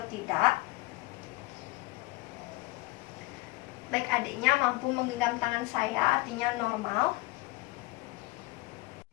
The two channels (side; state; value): right; quieter; 21.5 dB